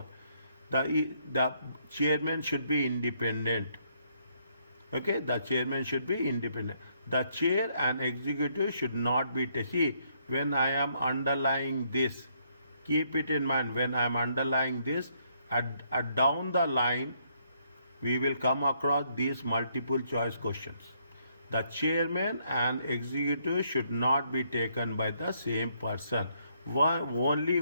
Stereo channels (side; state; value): both; inverted; correlation -0.71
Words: The chairman should be independent. Okay, the chairman should be independent. The chair and executive should not be, see, when I am underlying this, keep it in mind, when I am underlying this, at down the line, we will come across these multiple choice questions. The chairman and executive should not be taken by the same person. Only